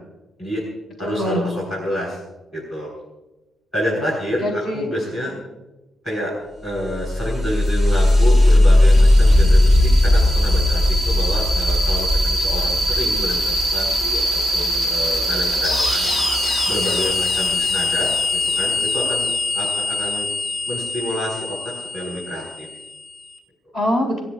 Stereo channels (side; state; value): both; normal; correlation 0.87